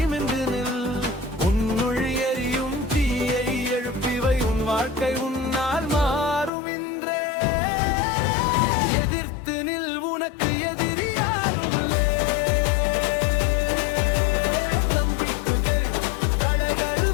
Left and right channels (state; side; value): drops out; right; at 6.5 s